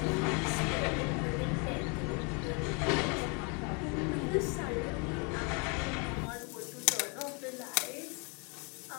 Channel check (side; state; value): right; quieter; 33.9 dB